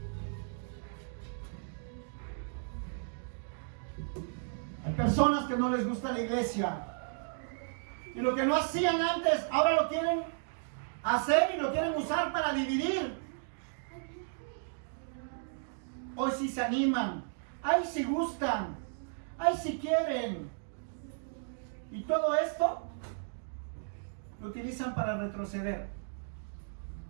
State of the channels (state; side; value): silent; left; digital silence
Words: Hay personas que no les gusta la iglesia. Y lo que no hacían antes, ahora lo quieren hacer y lo quieren usar para dividir. Hoy sí se animan. Ay, sí gustan. Ay, sí quieren. Y todo esto lo utilizan para retroceder.